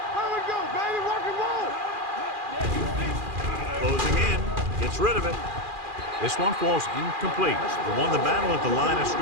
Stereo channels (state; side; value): late; left; 2.4 ms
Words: go, baby. Rock and roll. Closing in. Gets rid of it. This one falls incomplete. They won the battle at the line of